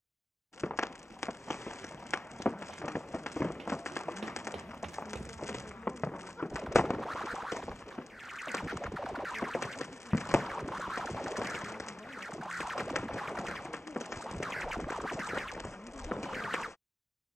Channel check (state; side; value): normal; both; correlation 0.95